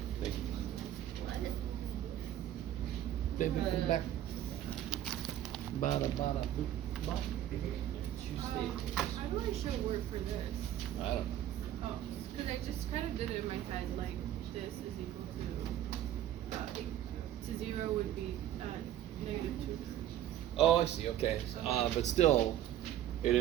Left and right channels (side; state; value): left; quieter; 11.8 dB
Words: Thank you. What? Baby, come back. Bada, bada, boop, bop. How do I show work for this? I don't know. Oh, because I just kind of did it in my head, like this is equal to 0 would be -2. Oh, I see. Okay. But still, it